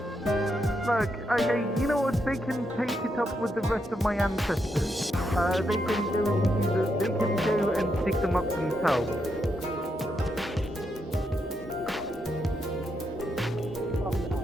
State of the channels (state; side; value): normal; both; correlation 0.81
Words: Look, okay, you know what? They can take it up with the rest of my ancestors. They can go and dig them up themselves.